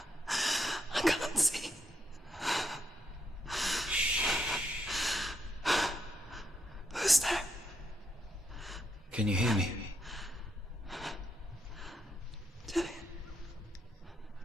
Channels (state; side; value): normal; both; correlation 0.79